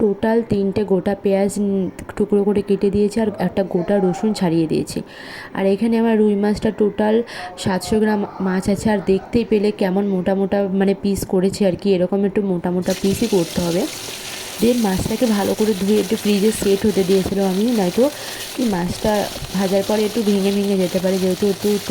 টোটাল 3টে গোটা পেঁয়াজ টুকরো করে কেটে দিয়েছি, আর একটা গোটা রসুন ছাড়িয়ে দিয়েছি। আর এখানে আমার রুই মাছটা টোটাল 700 গ্রাম মাছ আছে। আর দেখতেই পেলে কেমন মোটা মোটা মানে পিস করেছি আর কি, এরকম একটু মোটা মোটা পিসই করতে হবে। দেন মাছটাকে ভালো করে ধুয়ে একটু ফ্রিজে সেট হতে দিয়েছিলাম আমি, নয়তো কি মাছটা ভাজার পরে একটু ভেঙে ভেঙে যেতে পারে, যেহেতু একটু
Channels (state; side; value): identical; both; correlation 1.00